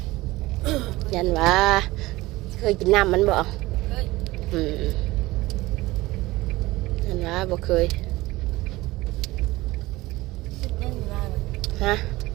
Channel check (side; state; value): left; quieter; 19.3 dB